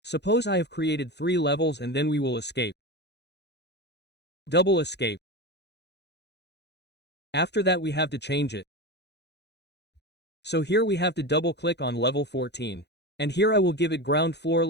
Suppose I have created 3 levels and then we will escape. Double escape. After that we have to change it. So here we have to double click on level 14. And here I will give it ground floor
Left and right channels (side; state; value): right; late; 0.50 ms